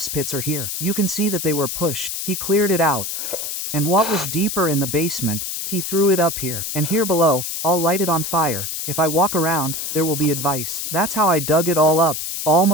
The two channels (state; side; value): noise; left; hiss, 4 dB below the sound